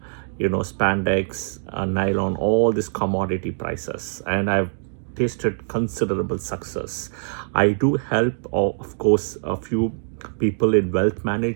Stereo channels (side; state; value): left; silent; digital silence